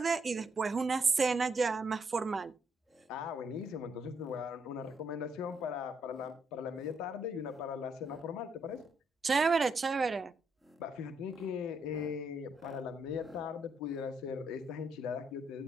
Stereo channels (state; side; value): normal; both; correlation 0.75